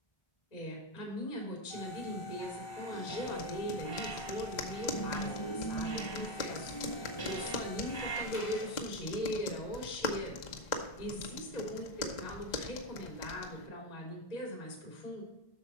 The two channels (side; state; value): right; late; 2.0 ms